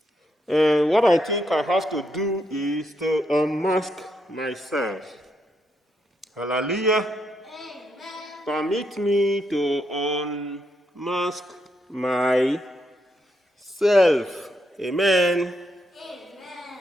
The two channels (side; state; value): both; normal; correlation 0.79